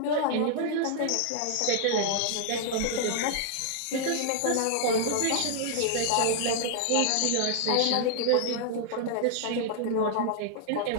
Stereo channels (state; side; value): different; both; correlation 0.00